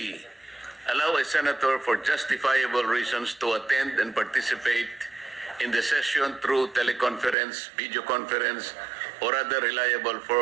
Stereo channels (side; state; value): left; drops out; at 7.4 s